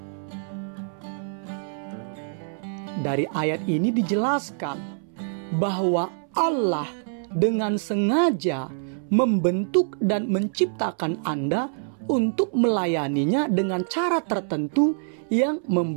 Dari ayat ini dijelaskan bahwa Allah dengan sengaja membentuk dan menciptakan Anda untuk melayaninya dengan cara tertentu yang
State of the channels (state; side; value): silent; left; 61 dB below the other